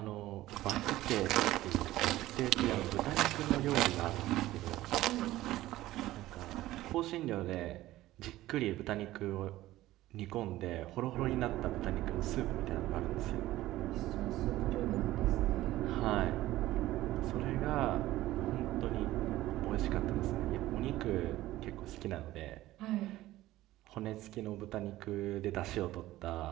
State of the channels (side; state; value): left; quieter; 15.9 dB